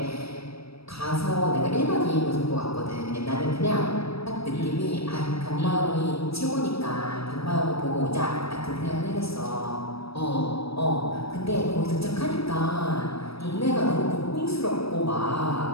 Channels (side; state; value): right; late; 0.77 ms